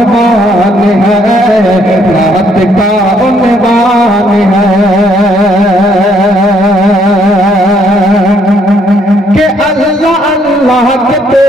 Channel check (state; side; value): normal; both; correlation 0.68